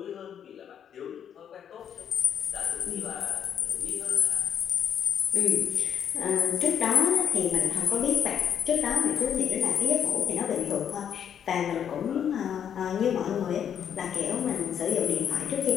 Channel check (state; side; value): quieter; right; 8.7 dB